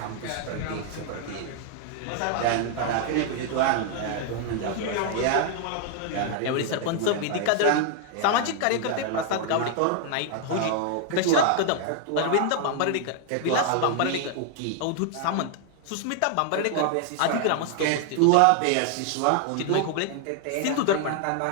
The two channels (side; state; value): both; different; correlation 0.00